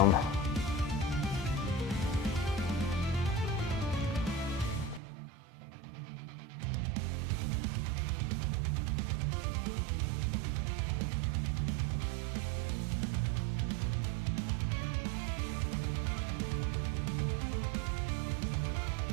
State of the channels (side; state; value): left; drops out; at 5.0 s